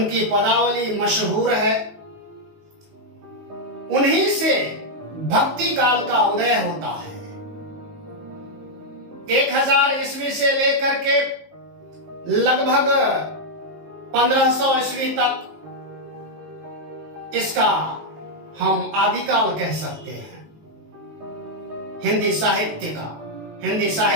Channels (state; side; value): late; left; 19 ms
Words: पदावली मशहूर है। उन्हीं से भक्ति काल का उदय होता है। 1000 ईस्वी से लेकर के लगभग 1500 ईस्वी तक इसका हम आदिकाल कह सकते हैं, हिंदी साहित्य का, हिंदी